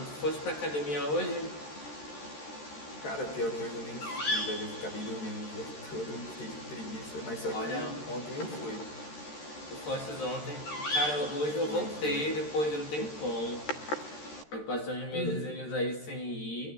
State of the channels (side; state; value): right; late; 13 ms